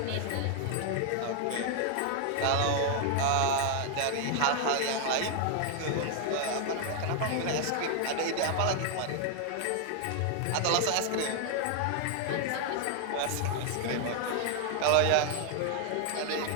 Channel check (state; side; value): different; both; correlation 0.00